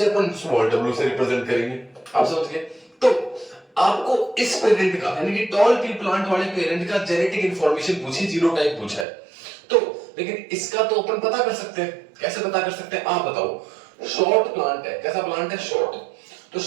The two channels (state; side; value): drops out; left; at 9.1 s